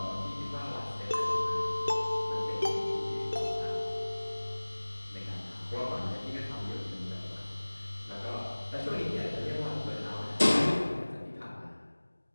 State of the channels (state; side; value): inverted; both; correlation -1.00